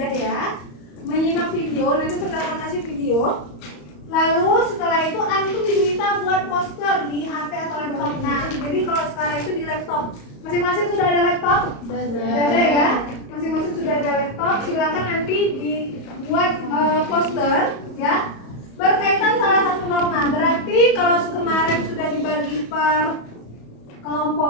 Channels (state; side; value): late; right; 34 ms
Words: ya. Menyimak video, nanti saya akan kasih video. Lalu setelah itu antum diminta buat poster di HP atau laptop. Nah, jadi kalau sekarang itu di laptop. Masing-masing sudah ada laptop? Sudah ada ya. Masing-masing sudah ada laptop. Silakan nanti dibuat poster ya. Berkaitan salah satu norma. Berarti kalau kemarin sudah dibagi per